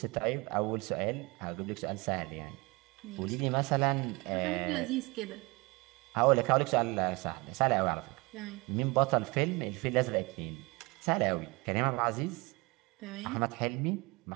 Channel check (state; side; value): quieter; left; 25.7 dB